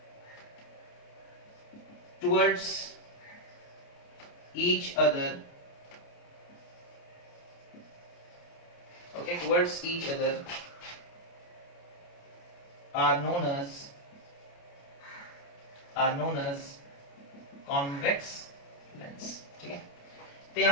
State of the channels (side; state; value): right; late; 29 ms